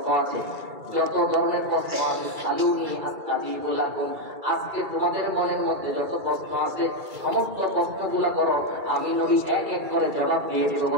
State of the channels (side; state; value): left; late; 2.3 ms